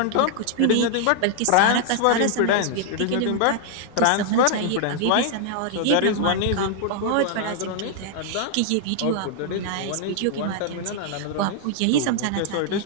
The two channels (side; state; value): both; different; correlation 0.00